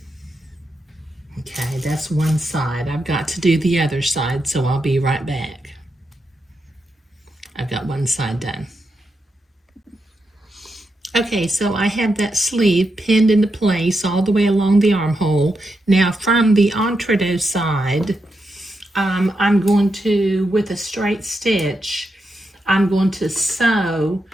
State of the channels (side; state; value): both; normal; correlation 0.85